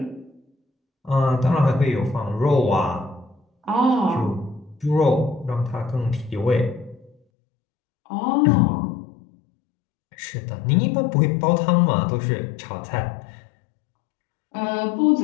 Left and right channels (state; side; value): drops out; right; at 7.2 s